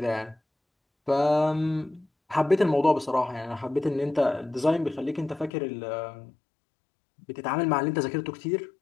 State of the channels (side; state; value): right; drops out; at 5.5 s